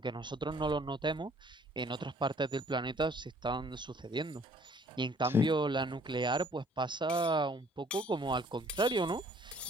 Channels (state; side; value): normal; both; correlation 0.58